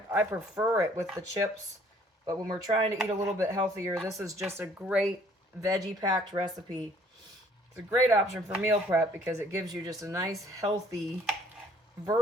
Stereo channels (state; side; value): normal; both; correlation 0.59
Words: prefer it with the chips, but when we're trying to eat a little bit healthier, this is just a great veggie-packed recipe It's a great option for meal prep because it gives you just a nice, healthy